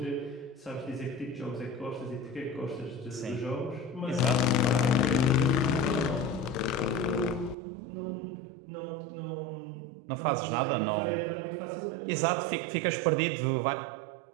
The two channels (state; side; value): drops out; left; at 7.6 s